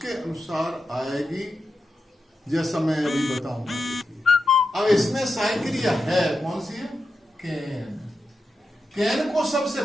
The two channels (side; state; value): both; normal; correlation 0.88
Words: अनुसार आएगी, जैसा मैं अभी बताऊंगा। अब इसमें सहायक क्रिया है, कौन सी है? कैन। कैन को सबसे